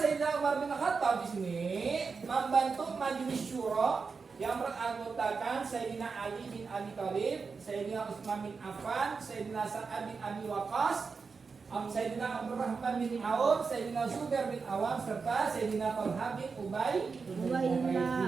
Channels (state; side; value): quieter; left; 5.0 dB